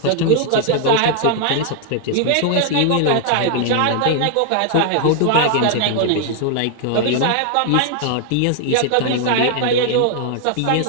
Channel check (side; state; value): both; different; correlation 0.00